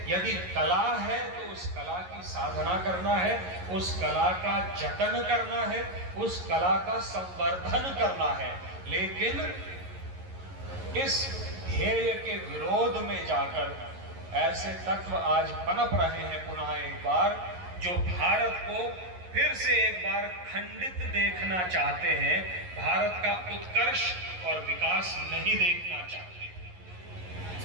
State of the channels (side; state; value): left; late; 11 ms